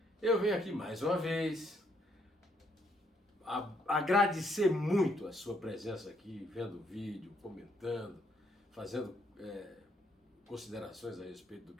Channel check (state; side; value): normal; both; correlation 0.72